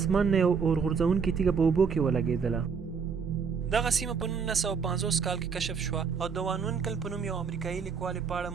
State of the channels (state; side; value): quieter; left; 5.9 dB